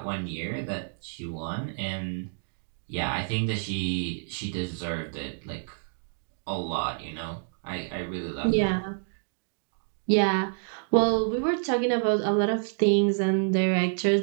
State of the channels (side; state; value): left; silent; digital silence